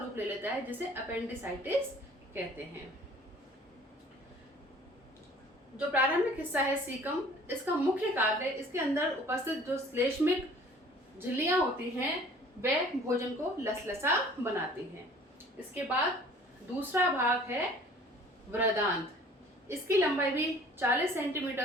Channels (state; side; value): normal; both; correlation 0.50